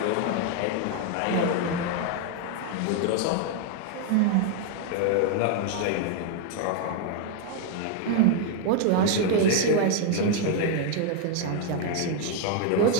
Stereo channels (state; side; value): different; both; correlation 0.00